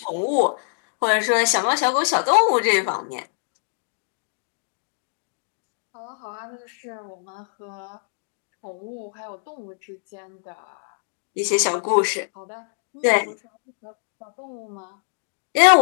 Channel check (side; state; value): right; silent; digital silence